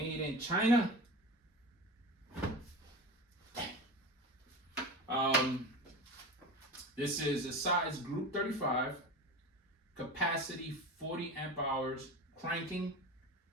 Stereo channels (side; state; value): both; normal; correlation 0.29